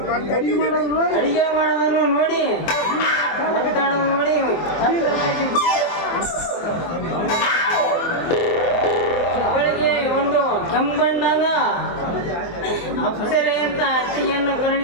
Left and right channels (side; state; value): right; late; 24 ms